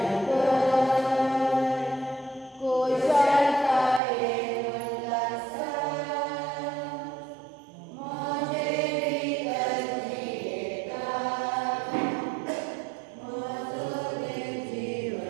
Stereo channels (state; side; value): drops out; left; at 4.0 s